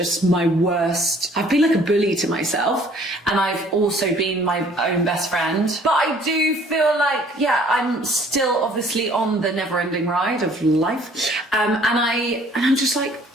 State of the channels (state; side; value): normal; both; correlation 0.56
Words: my worst. I've been like a bully to myself, and I've also been my own best friend. But I do feel like, yeah, I'm still obviously on the never-ending ride of life, and I'm just like,